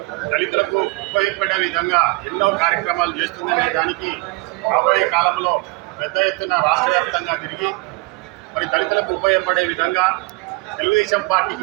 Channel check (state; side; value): quieter; left; 26.2 dB